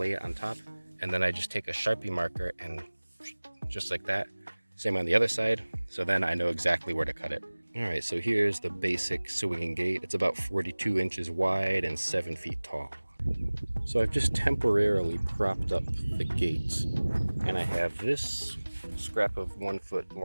it on top, and then I just take a Sharpie marker and just like that, same on the other side, so then I know exactly where to cut it. Alright, so here's the basic swinging gate. It's about 42 inches wide and 7 feet tall. So I've just temporarily propped up the gate, and I have this scrap of 1 foot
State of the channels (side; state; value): both; inverted; correlation -1.00